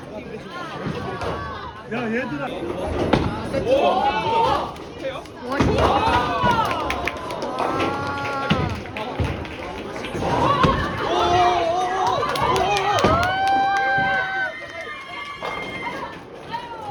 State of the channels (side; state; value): both; identical; correlation 1.00